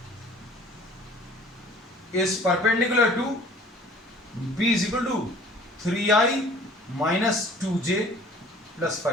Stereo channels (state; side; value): normal; both; correlation 0.50